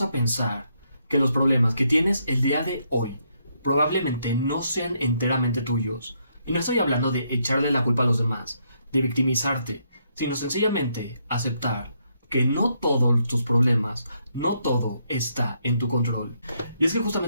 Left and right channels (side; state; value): both; inverted; correlation -0.75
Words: a pensar que los problemas que tienes el día de hoy probablemente no sean enteramente tuyos? Y no estoy hablando de echarle la culpa a los demás, de victimizarte, sino sencillamente aceptar que no todos tus problemas, no todo está en tu control. Y es que